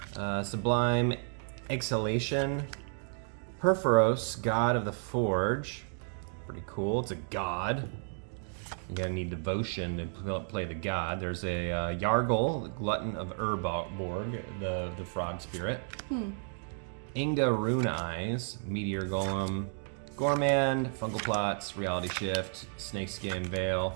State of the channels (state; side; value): silent; left; 56 dB below the other